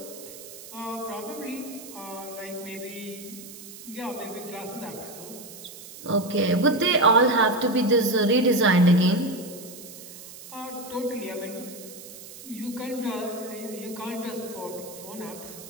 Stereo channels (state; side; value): noise; right; hiss, 15 dB below the sound